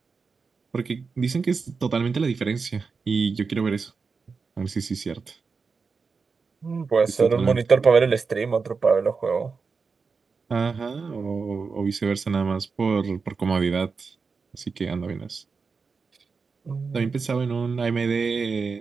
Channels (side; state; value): left; quieter; 4.9 dB